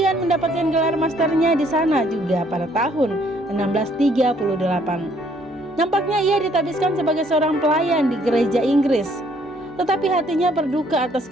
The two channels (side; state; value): both; normal; correlation 0.65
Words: mendapatkan gelar masternya di sana juga pada tahun 1638. Nampaknya ia ditabiskan sebagai seorang pelayan di gereja Inggris, tetapi hatinya berduka